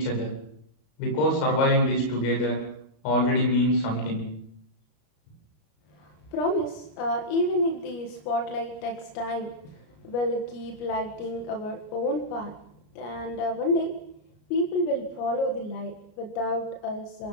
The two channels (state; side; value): late; right; 33 ms